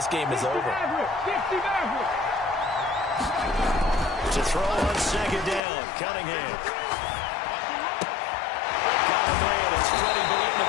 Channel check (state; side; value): drops out; right; at 5.6 s